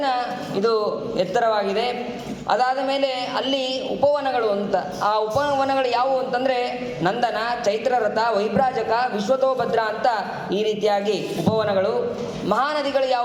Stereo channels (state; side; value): identical; both; correlation 1.00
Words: ಇದು ಎತ್ತರವಾಗಿದೆ. ಅದಾದ ಮೇಲೆ ಅಲ್ಲಿ ಉಪವನಗಳು ಅಂತ, ಆ ಉಪವನಗಳು ಯಾವುವು ಅಂತಂದರೆ ನಂದನ, ಚೈತ್ರರಥ, ವೈಭ್ರಾಜಕ, ವಿಶ್ವತೋಭದ್ರ ಅಂತ ಈ ರೀತಿಯಾಗಿ ಉಪವನಗಳು. ಮಹಾನದಿಗಳು